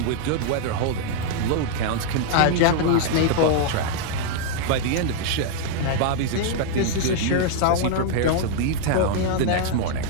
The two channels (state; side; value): different; both; correlation -0.01